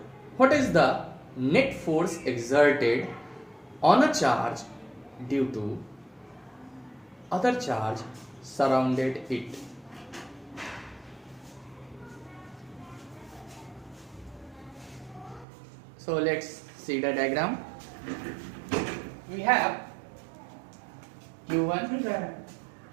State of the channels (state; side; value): drops out; left; at 15.5 s